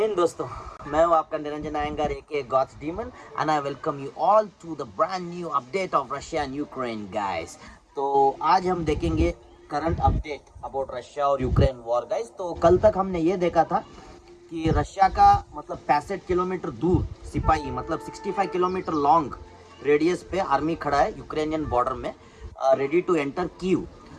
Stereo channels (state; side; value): identical; both; correlation 1.00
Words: दोस्तों, मैं हूं आपका Niranjan Iyengar aka god's demon and I welcome you all to the brand new update of Russia and Ukraine guys. तो आज हम देखेंगे करंट अपडेट अबाउट रशिया और यूक्रेन वॉर गाइस। तो कल तक हमने ये देखा था कि रशिया का मतलब 65 किलोमीटर दूर सिपाही मतलब 65 किलोमीटर लॉन्ग रेडियस पे आर्मी खड़ा है यूक्रेनियन बॉर्डर में, रेडी टू एंटर कीव।